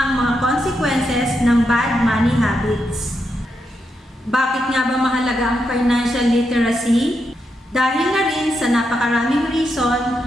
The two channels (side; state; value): both; normal; correlation 0.83